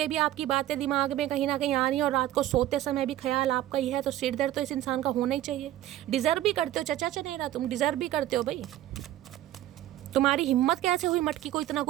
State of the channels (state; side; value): quieter; left; 13.7 dB